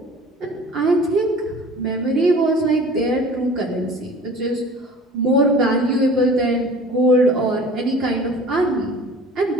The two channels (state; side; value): normal; both; correlation 0.44